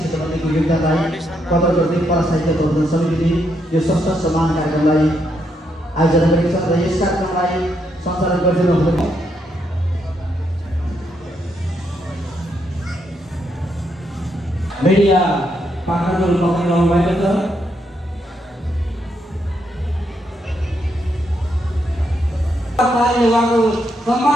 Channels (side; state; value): both; normal; correlation 0.78